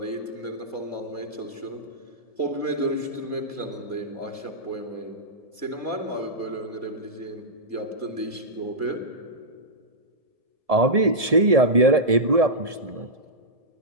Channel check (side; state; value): left; late; 1.7 ms